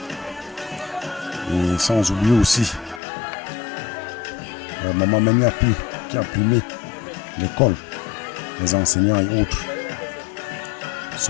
Et sans oublier aussi Maman Meniapi qui a primé l'école, les enseignants et autres.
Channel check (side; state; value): right; drops out; at 3.0 s